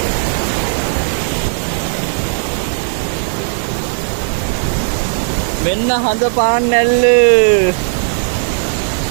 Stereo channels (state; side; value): silent; left; digital silence